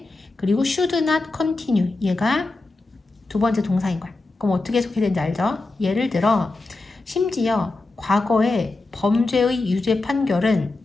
그리고 should not continue. 얘가 두 번째 동사인 거야. 그럼 어떻게 해석해야 되는지 알죠? 예를 들어 심지어 과거의 범죄의 유죄 판결은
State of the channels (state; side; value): quieter; right; 3.3 dB